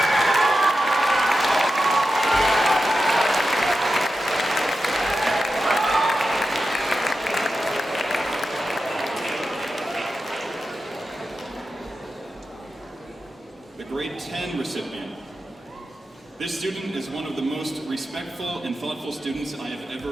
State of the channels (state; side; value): normal; both; correlation 0.91